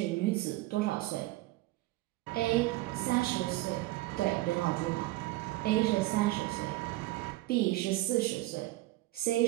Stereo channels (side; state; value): left; quieter; 18.5 dB